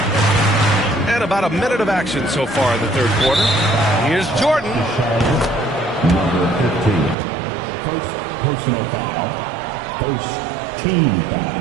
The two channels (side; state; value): left; drops out; at 7.2 s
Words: And about a minute of action so far in the third quarter. Here's Jordan. Number 15. First personal foul. First team